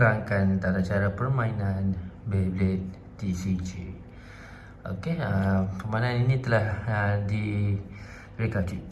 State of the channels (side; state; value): both; identical; correlation 1.00